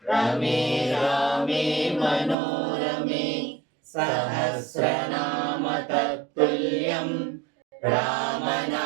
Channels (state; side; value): drops out; left; at 2.4 s